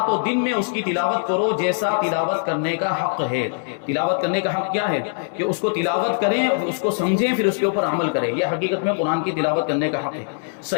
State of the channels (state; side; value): silent; right; digital silence